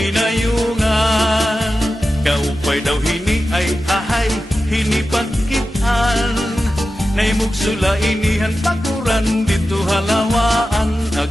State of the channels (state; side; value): normal; both; correlation 0.93